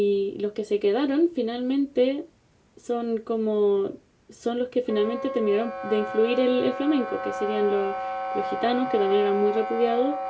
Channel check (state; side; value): identical; both; correlation 1.00